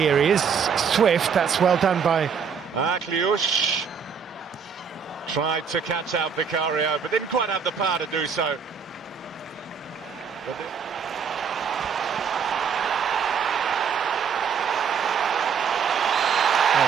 He is swift. That's well done by Akliush. Tried to catch out Vicario, but didn't quite have the power to do so. Oh,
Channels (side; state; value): left; quieter; 6.5 dB